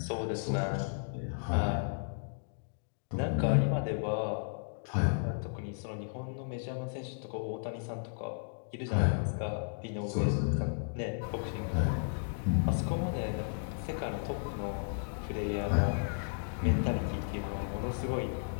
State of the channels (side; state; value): right; silent; digital silence